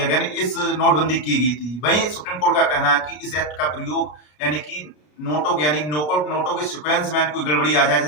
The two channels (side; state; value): right; late; 33 ms